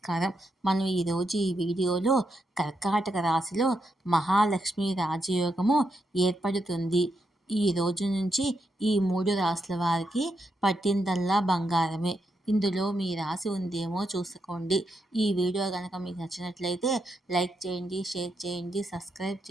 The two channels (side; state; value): both; normal; correlation 0.82